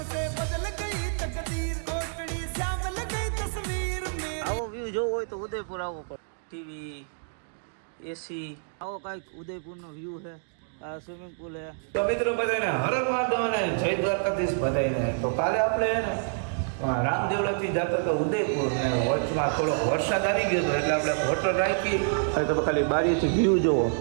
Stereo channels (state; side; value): silent; left; digital silence